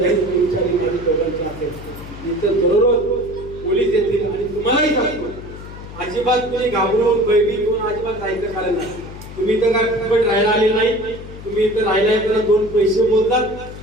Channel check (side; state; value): left; noise; hum, 14 dB below the sound